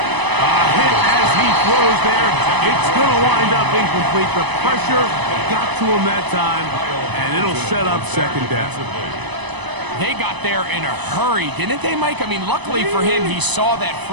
A hit as he throws there. It's going to wind up incomplete. The pressure got to him that time, and it'll set up 2nd down. They got there in a hurry, didn't they, Mike? I mean, luckily for him, he saw that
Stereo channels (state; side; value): late; left; 1.0 ms